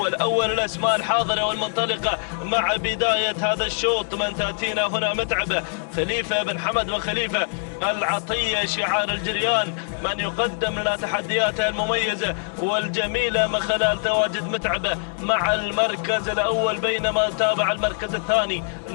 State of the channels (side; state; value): right; silent; 63 dB below the other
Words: أول الأسماء الحاضرة والمنطلقة مع بداية هذا الشوط. من تأتينا هنا متعبة خليفة بن حمد وخليفة العطية، شعار الجريان، من يقدم لنا تحدياته المميزة والجميلة من خلال تواجد متعبة مع المركز الأول. بينما نتابع المركز الثاني،